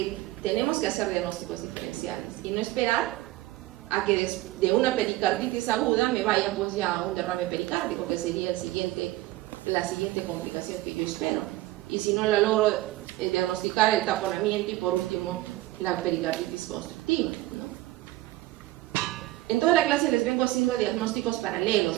tenemos que hacer diagnósticos diferenciales y no esperar a que de una pericarditis aguda me vaya pues ya a un derrame pericárdico, que sería la siguiente complicación que yo espero. Y si no la logro diagnosticar, el taponamiento y por último la pericarditis constructiva, ¿no? En toda la clase les vengo haciendo diagnósticos paralelos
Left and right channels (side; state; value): left; quieter; 17.5 dB